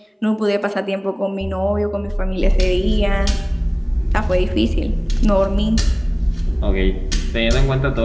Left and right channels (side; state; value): both; identical; correlation 1.00